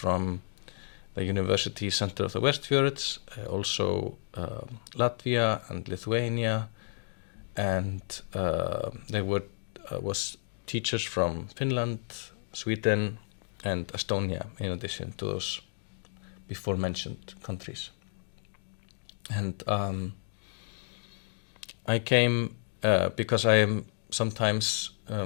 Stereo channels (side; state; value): right; silent; digital silence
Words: the University Center of the Westfjords, also Latvia and Lithuania, and there was teachers from Finland, Sweden, and Estonia, in addition to those before mentioned countries. And I came because I am sometimes